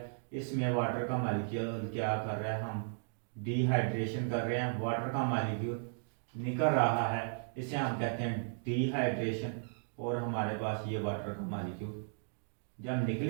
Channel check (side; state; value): left; silent; digital silence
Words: इसमें वाटर का मॉलिक्यूल क्या कर रहा है, हम डिहाइड्रेशन कर रहे हैं, वाटर का मॉलिक्यूल निकल रहा है, इसे हम कहते हैं डिहाइड्रेशन। और हमारे पास ये वाटर का मॉलिक्यूल जब